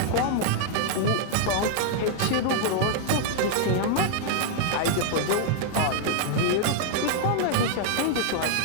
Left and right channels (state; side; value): different; both; correlation 0.00